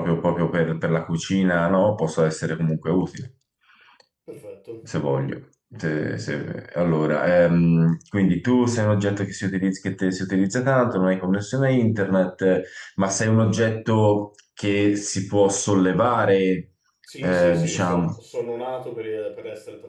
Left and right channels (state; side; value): identical; both; correlation 1.00